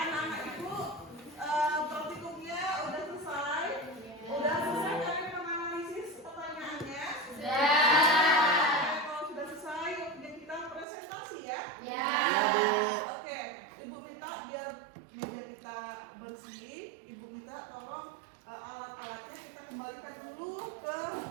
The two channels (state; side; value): drops out; left; at 10.9 s